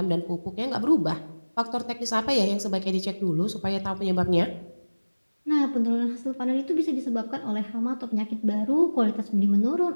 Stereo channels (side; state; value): both; inverted; correlation -1.00